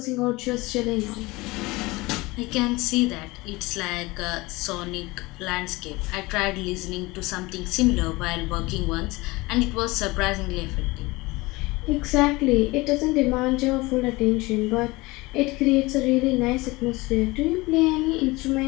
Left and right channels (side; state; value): right; quieter; 22.3 dB